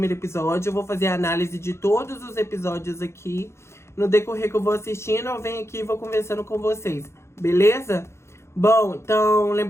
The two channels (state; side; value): late; right; 0.13 ms